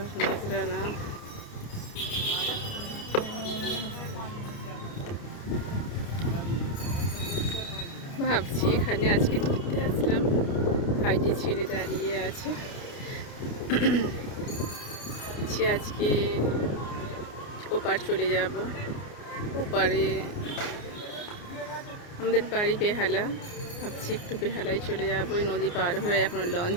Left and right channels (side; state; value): right; late; 29 ms